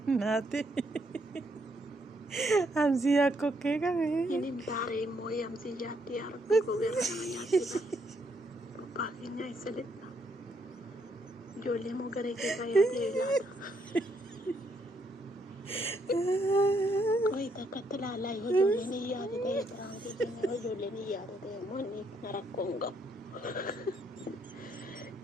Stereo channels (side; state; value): both; normal; correlation 0.73